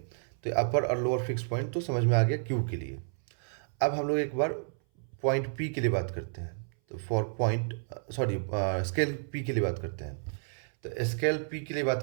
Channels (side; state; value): left; silent; 57 dB below the other